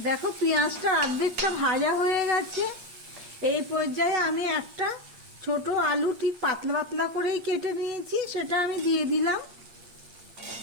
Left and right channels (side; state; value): left; late; 8.5 ms